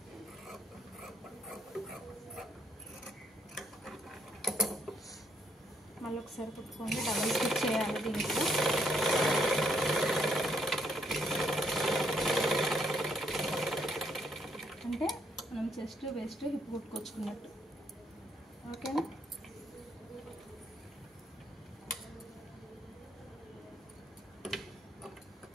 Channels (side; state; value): both; normal; correlation 0.72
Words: మళ్ళీ ఒకసారి కుట్టుకోండి. డబల్ స్టిచ్ చేయాలి దీంట్లో. అంటే మనం చెస్ట్ వెస్ట్ హిప్ కుట్టుకొచ్చుకున్నట్టు. ఓకేనా,